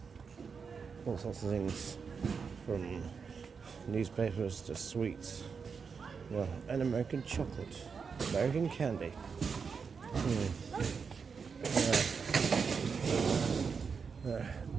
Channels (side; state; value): left; quieter; 5.7 dB